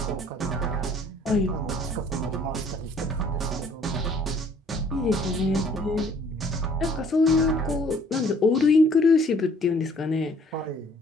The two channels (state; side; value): normal; both; correlation 0.58